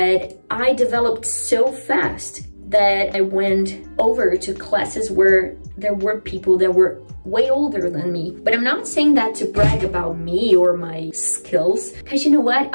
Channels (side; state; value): both; inverted; correlation -1.00